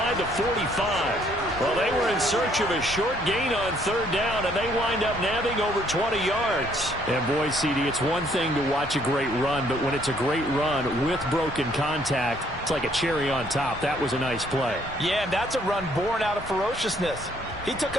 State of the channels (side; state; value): both; normal; correlation 0.65